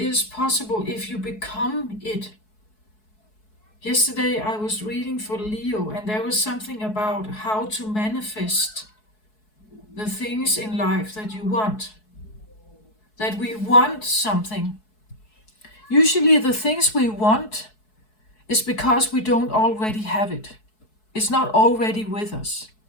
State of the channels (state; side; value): late; right; 4.7 ms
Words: possible if you become it. Yesterday I was reading for Leo, and there was something about how to manifest the things in life that you want. That we want something. Usually the things we want is because we don't already have it. It's not already with us.